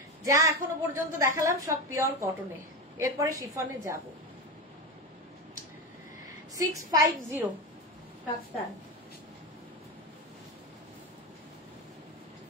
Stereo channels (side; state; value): both; normal; correlation 0.19